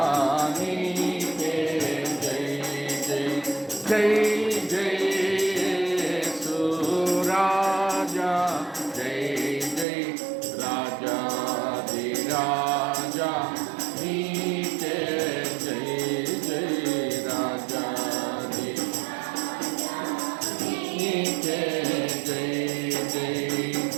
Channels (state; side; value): drops out; left; at 9.9 s